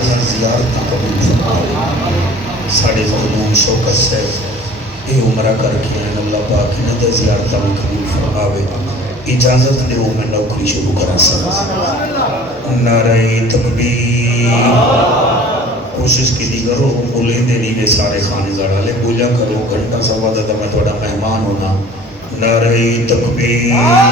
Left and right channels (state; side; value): normal; both; correlation 0.47